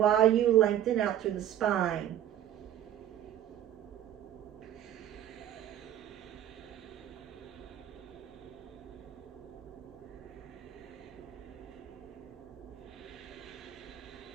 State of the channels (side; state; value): left; quieter; 11.3 dB